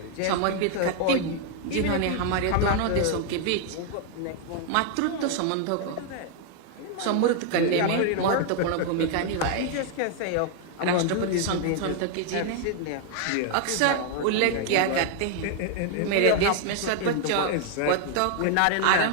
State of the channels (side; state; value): both; different; correlation 0.00